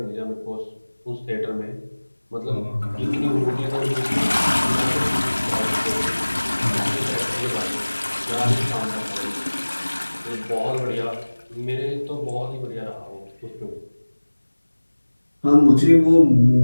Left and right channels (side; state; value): both; inverted; correlation -1.00